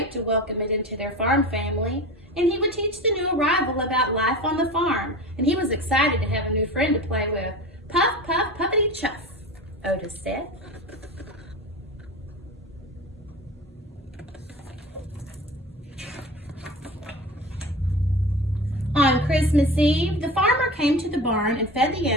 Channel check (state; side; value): normal; both; correlation 0.32